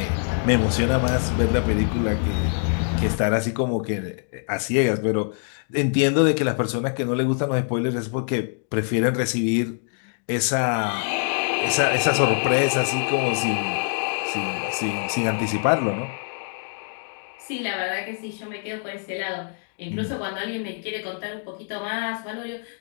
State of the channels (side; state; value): right; silent; 62 dB below the other